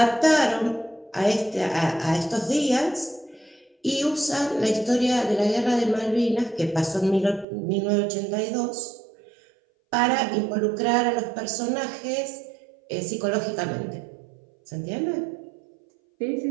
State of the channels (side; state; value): left; drops out; at 7.5 s